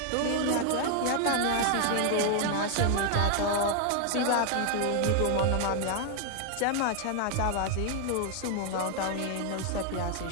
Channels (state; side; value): different; both; correlation 0.00